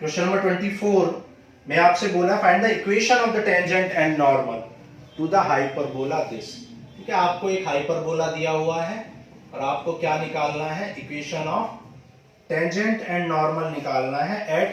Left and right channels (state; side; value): identical; both; correlation 1.00